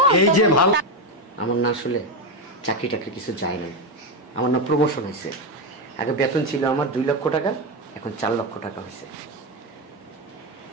এই যে ভালো, আমার না আসলে চাকরি টাকরি কিছু যায় না, আমার না প্রমোশন হয়েছে। আগে বেতন ছিল আমার 2 লক্ষ টাকা, এখন 4 লক্ষ টাকা হয়েছে।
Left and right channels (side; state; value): both; normal; correlation 0.10